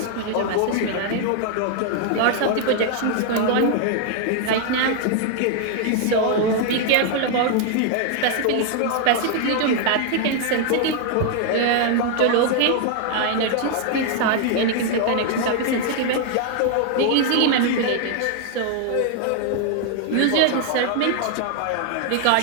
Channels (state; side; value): different; both; correlation 0.00